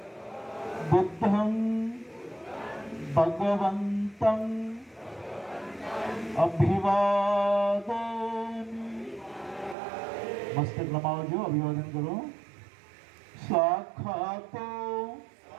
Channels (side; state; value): left; drops out; at 9.8 s